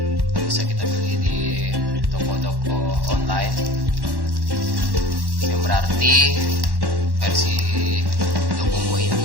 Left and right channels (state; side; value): late; left; 1.1 ms